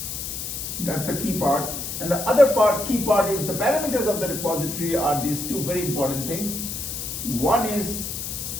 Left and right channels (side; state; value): left; noise; hiss, 5 dB below the sound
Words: That's the key part. And the other key part is the parameters of the repository are these two very important things. One is